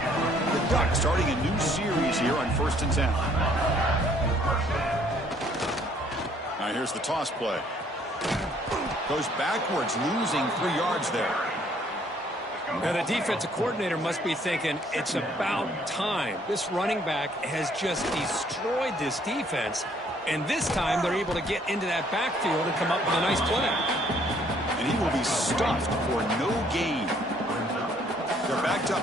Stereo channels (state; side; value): normal; both; correlation 0.63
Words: The Ducks starting a new series here on 1st and 10. Now here's the toss play. Goes backwards, losing 3 yards there. Now the defensive coordinator must be thinking it's about time. This running back has just destroyed this defense. And this time they're able to get into that backfield and come up with a nice play. And he will be stuffed for no gain. They're backed